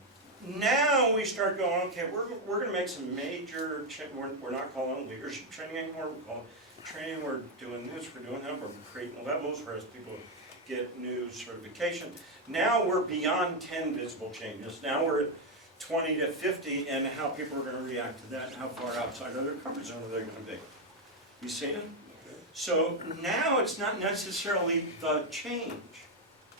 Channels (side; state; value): both; normal; correlation 0.04